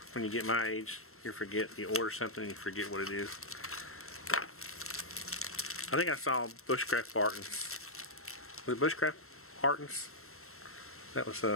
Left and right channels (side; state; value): right; late; 0.63 ms